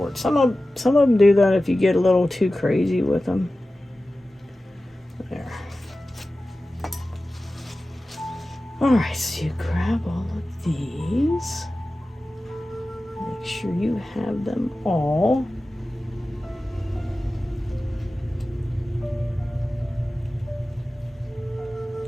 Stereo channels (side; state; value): both; normal; correlation 0.95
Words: Some of them do that if you get a little too crazy with them. There. All right, so you grab all of these. Make sure you have them all.